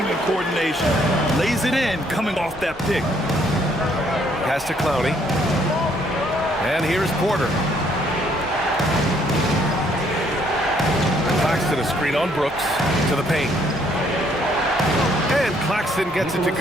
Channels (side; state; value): left; noise; hum, 25 dB below the sound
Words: and coordination. Lays it in coming off that pick. Pass to Clowney. And here's Porter. Claxton a screen on Brooks to the paint. And Claxton gets it to